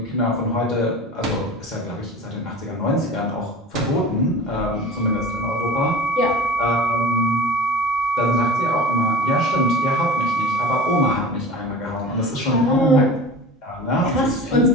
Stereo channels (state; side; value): normal; both; correlation 0.36